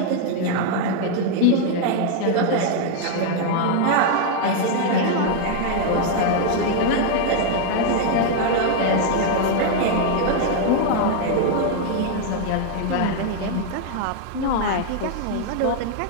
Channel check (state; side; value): different; both; correlation 0.00